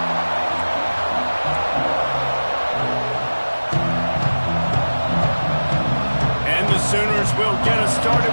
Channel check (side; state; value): both; inverted; correlation -1.00